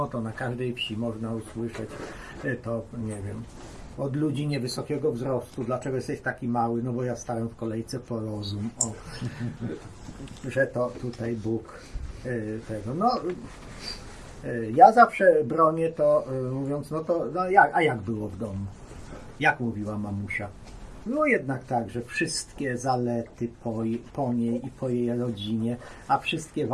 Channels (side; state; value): both; identical; correlation 1.00